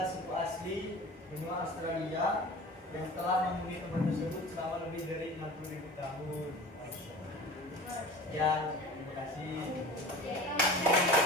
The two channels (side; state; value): both; normal; correlation 0.38